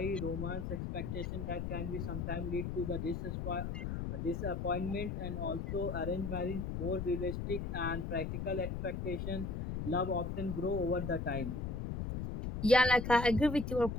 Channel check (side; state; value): left; noise; rumble, 3 dB below the sound